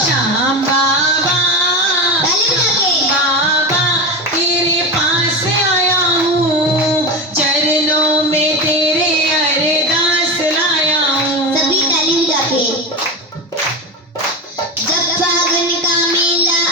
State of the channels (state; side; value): normal; both; correlation 0.20